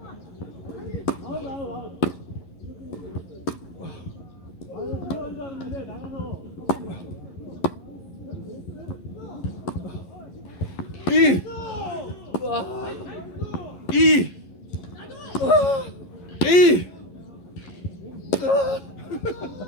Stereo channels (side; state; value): right; late; 11 ms